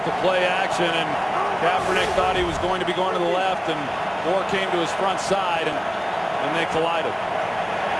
to play action, and Kaepernick thought he was going to be going to the left, and Gore came to his front side, and they collided.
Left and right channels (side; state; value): both; identical; correlation 1.00